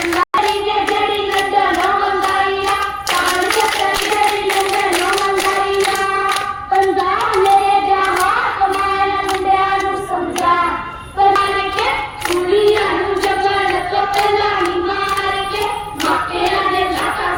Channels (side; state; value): both; identical; correlation 1.00